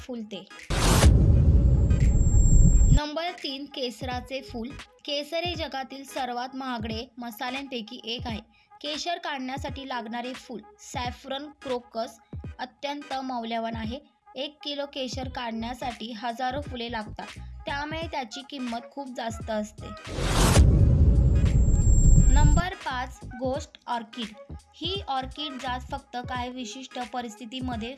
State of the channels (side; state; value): both; identical; correlation 1.00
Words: नंबर 3, केसराचे फूल। केसर हे जगातील सर्वात महागडे मसाल्यांपैकी एक आहे। केशर काढण्यासाठी लागणारे फूल सॅफ्रन क्रोकस अत्यंत मौल्यवान आहे। 1 किलो केशर काढण्यासाठी हजारो फुले लागतात, त्यामुळे त्याची किंमत खूप जास्त असते। Number 5, ghost orchid. ही ऑर्किड जात फक्त काही विशिष्ट परिस्थितीमध्ये